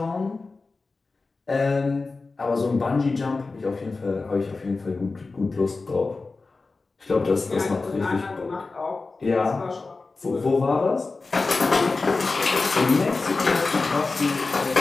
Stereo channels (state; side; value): quieter; right; 3.8 dB